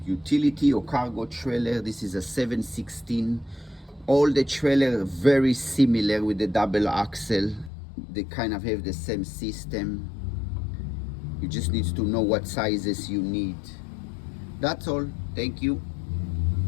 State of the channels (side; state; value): right; drops out; at 7.7 s